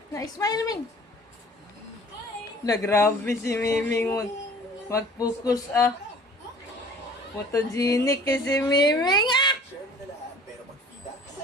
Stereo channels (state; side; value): normal; both; correlation 0.49